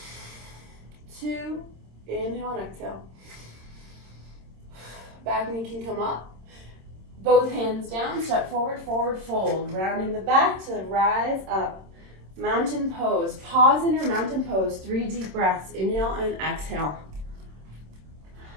2. Inhale and exhale. Back knee can come up. Both hands down. Step forward, forward fold. Rounding the back to rise up. Mountain pose. Pause in your mountain pose. 3 deep breaths. Inhale and exhale.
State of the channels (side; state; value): left; late; 26 ms